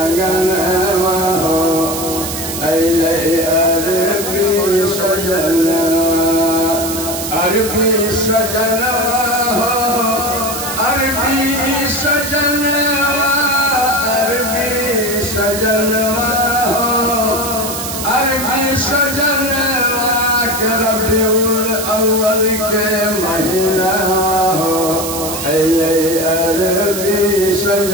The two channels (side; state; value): right; noise; hiss, 6 dB below the sound